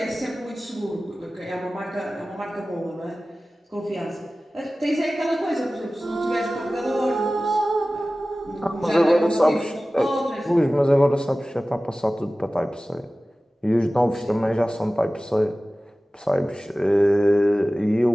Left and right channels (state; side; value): normal; both; correlation 0.97